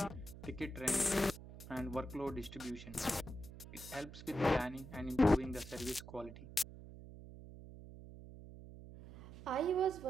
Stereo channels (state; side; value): noise; right; hum, 14 dB below the sound